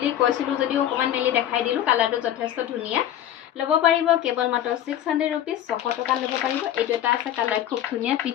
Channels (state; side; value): quieter; right; 11.4 dB